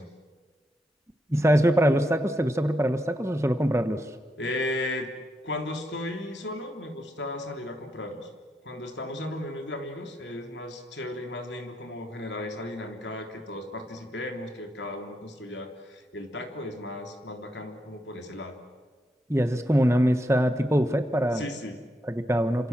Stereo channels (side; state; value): both; normal; correlation 0.81